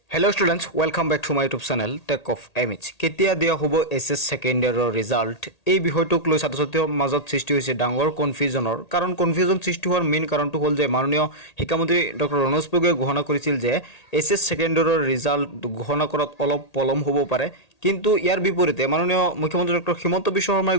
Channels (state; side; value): late; right; 1.8 ms